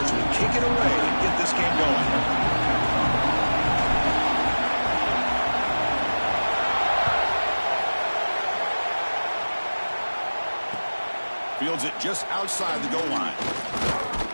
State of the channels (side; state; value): both; inverted; correlation -1.00